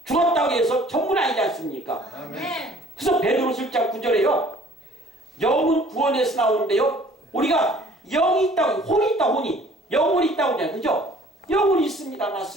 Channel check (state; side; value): normal; both; correlation 0.54